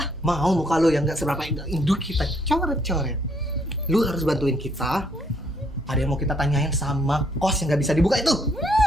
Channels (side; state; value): both; normal; correlation 0.69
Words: Mau muka lo yang nggak seberapa induk kita coret-coret. Lu harus bantuin kita. Ada yang mau kita tanyain sama kos yang nggak bisa dibuka itu.